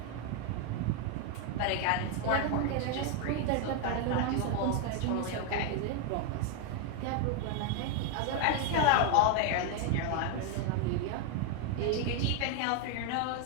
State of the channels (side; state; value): both; different; correlation 0.01